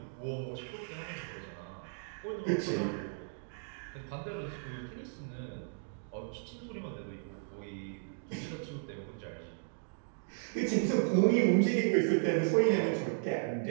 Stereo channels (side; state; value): left; silent; digital silence